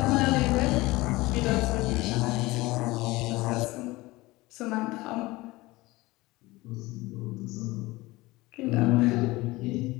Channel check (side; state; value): right; quieter; 20.6 dB